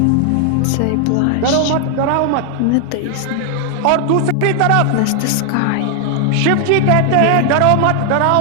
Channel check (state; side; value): different; both; correlation 0.00